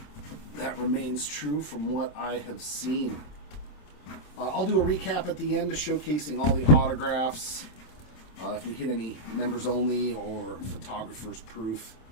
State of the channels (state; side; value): late; right; 27 ms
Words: that remains true from what I have seen. I'll do a recap at the end, showcasing all the autographs. If we hit any members only or photographers proof.